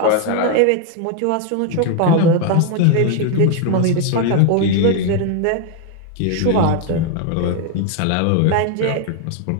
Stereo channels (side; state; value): both; different; correlation 0.01